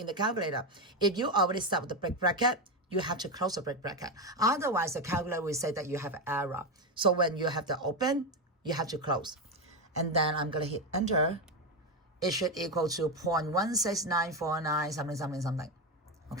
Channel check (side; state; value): both; normal; correlation 0.12